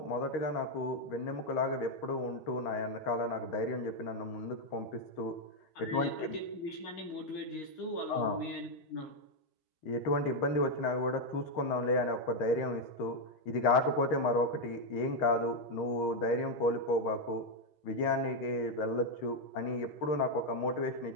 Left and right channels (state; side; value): late; right; 6.4 ms